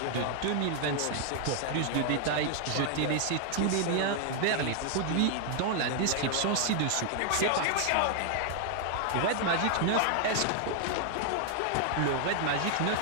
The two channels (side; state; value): both; different; correlation 0.00